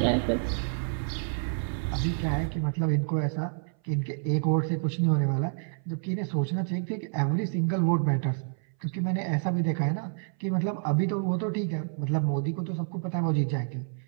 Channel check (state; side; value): silent; left; 59 dB below the other